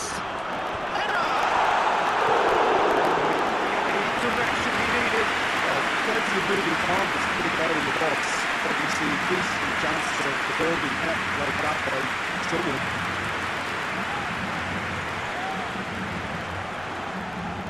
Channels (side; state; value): right; noise; rumble, 23 dB below the sound